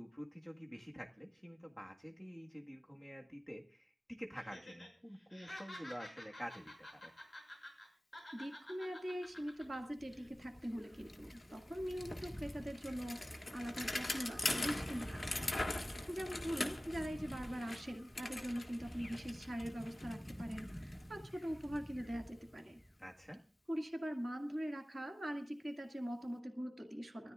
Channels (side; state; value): both; normal; correlation 0.97